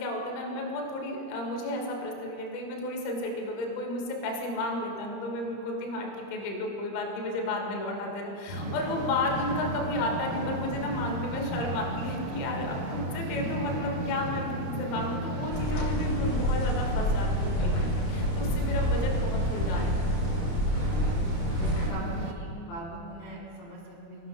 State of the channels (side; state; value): right; late; 30 ms